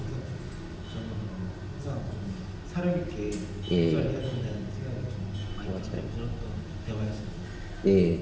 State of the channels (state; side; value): identical; both; correlation 1.00